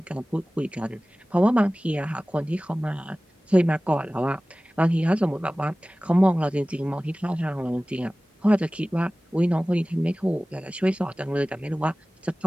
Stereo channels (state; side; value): normal; both; correlation 0.98